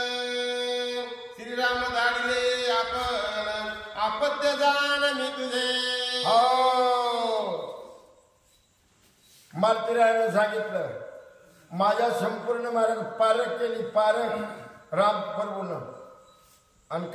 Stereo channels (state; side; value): identical; both; correlation 1.00